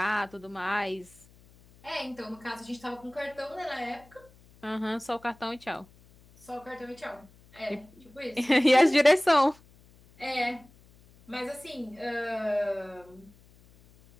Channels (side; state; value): left; noise; hum, 27 dB below the sound